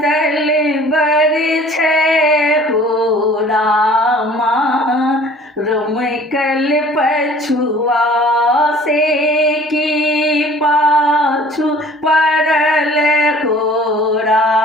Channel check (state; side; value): normal; both; correlation 0.50